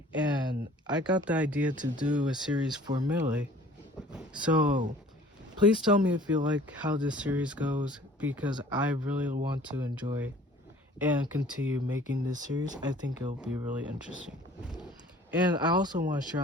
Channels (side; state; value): both; normal; correlation 0.51